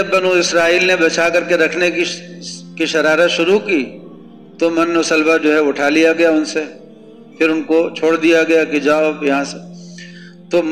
بنو اسرائیل نے بچا کر کے رکھنے کی شرارت شروع کی تو من و سلوہ جو ہے اٹھا لیا گیا ان سے، پھر ان کو چھوڑ دیا گیا کہ جاؤ یہاں سے۔ تو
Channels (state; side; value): identical; both; correlation 1.00